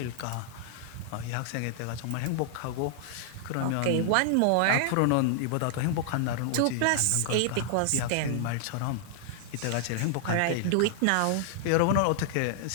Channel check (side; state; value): both; different; correlation -0.01